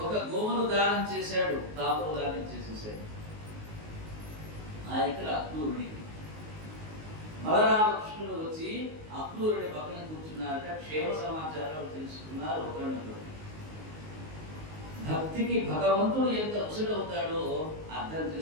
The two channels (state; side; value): late; left; 19 ms